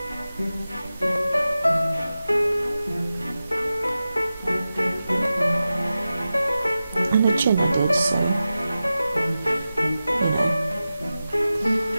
the chin I did, so you know,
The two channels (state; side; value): inverted; both; correlation -0.93